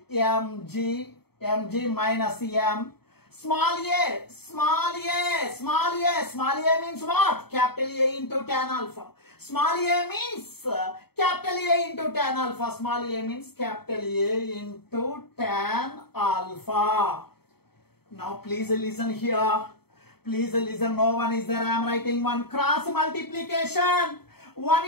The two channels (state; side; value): late; right; 0.96 ms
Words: mg minus m. Small a means what? Capital A into tan alpha. Small a means capital A into tan alpha. Small a means capital A into tan alpha. Now please listen here. Please listen. No one is there. I am writing one. Cross multiplication. 1